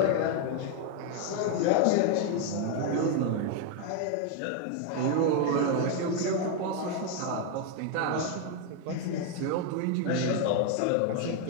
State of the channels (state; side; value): different; both; correlation 0.01